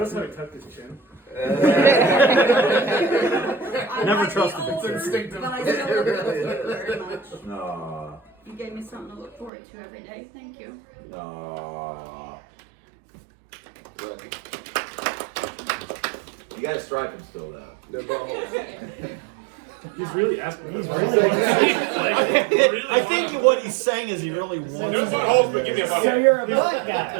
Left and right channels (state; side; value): drops out; left; at 9.5 s